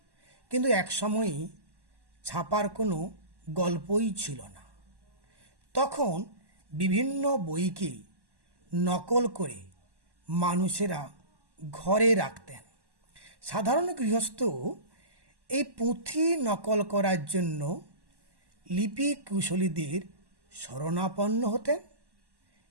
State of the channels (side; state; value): left; late; 1.1 ms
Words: কিন্তু এক সময়ই ছাপার কোনো গল্পই ছিল না। তখন বিভিন্ন বইকে নকল করে মানুষেরা ঘরে রাখতেন। সাধারণ গৃহস্থ এই পুঁথি নকল করার জন্য লিপি কুশলীদের শরণাপন্ন হতেন